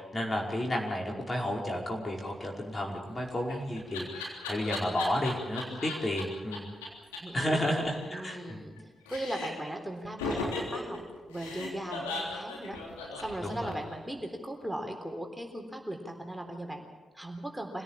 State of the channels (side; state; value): both; normal; correlation 0.85